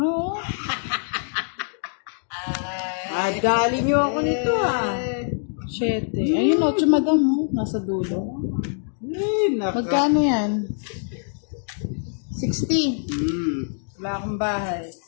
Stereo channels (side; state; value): right; silent; digital silence